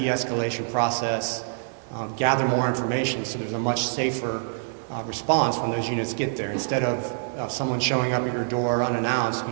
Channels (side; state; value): left; silent; 59 dB below the other